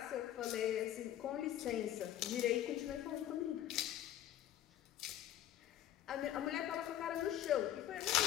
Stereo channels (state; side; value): quieter; right; 11.9 dB